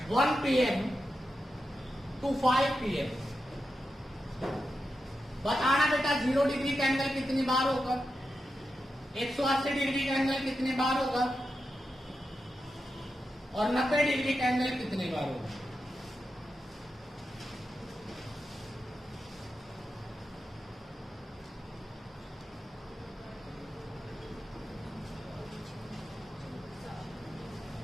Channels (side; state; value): both; normal; correlation 0.89